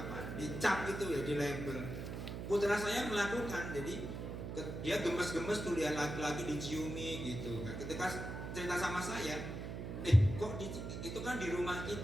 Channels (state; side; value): noise; right; hum, 6 dB below the sound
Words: gitu ya, di label. Putra saya melakukan, jadi dia gemes-gemes tuh lihat laki-laki diciumi gitu. Ketika cerita sama saya, itu kan di rumah